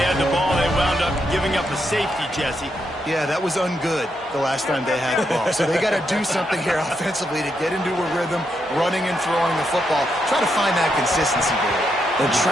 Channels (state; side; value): normal; both; correlation 0.81